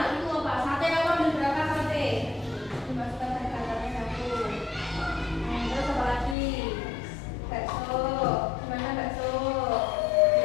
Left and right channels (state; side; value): drops out; right; at 6.4 s